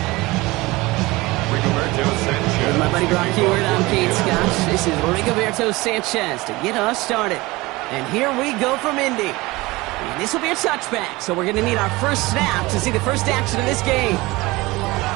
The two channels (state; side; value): quieter; left; 21.4 dB